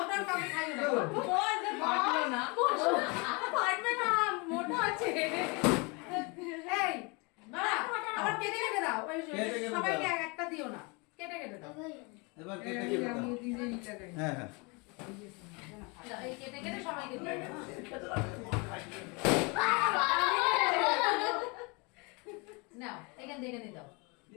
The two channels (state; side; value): quieter; right; 29.7 dB